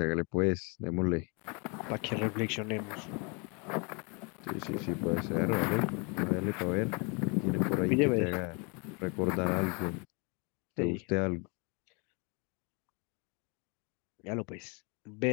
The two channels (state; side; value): quieter; right; 32.7 dB